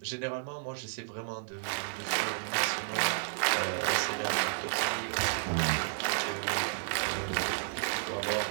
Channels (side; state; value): left; silent; digital silence